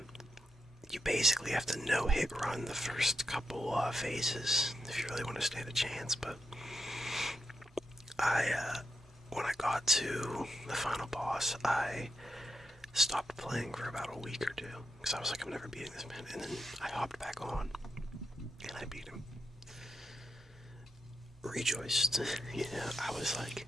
you basically have to no-hit run the first couple phases if you really want to stand a chance. But when I got to the final boss, I stopped playing for about a week or two because I was like, I'm never beating this man. And then I hopped back on and I beat him. Rejoiced. I was like,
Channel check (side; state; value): both; normal; correlation 0.85